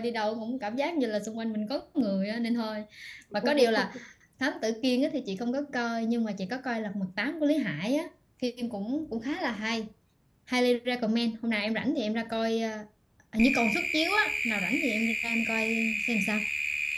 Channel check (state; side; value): identical; both; correlation 1.00